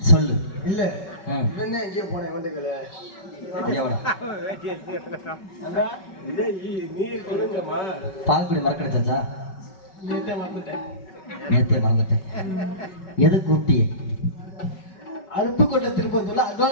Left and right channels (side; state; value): right; late; 5.3 ms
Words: சொல்லு. இல்ல ம் இவன் எங்கே போனேன் வண்டுகள. நீ சொல்லுங்கம்மா. பால்குடி மறக்கடிச்சாச்சா? நேத்தே வந்துட்டேன். நேத்தே மறந்துட்டேன். எது கூப்பிட்டியே? அருப்புக்கோட்டை திருப்பத்தூர்ல